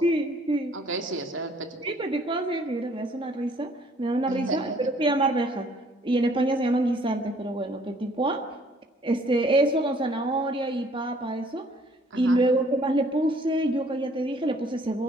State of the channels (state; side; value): normal; both; correlation 0.60